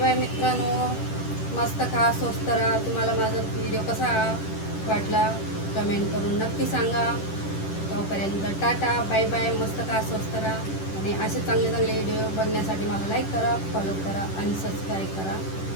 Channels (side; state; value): right; late; 10 ms